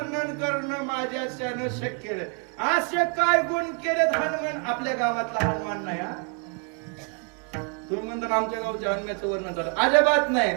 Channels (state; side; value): quieter; left; 38.2 dB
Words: करणं माझ्याच्यानं शक्य नाही. असे काय गुण केलेत हनुमान. आपल्या गावातला हनुमान नाही हा. तुम्ही म्हणता आमच्या गावच्या हनुमानाचं वर्णन झालं, अजिबात नाही